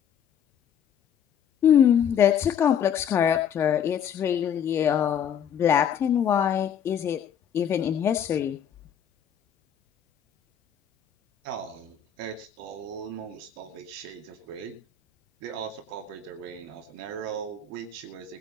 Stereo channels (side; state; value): right; quieter; 8.2 dB